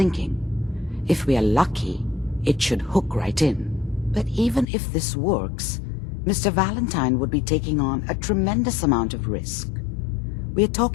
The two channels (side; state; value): right; drops out; at 4.7 s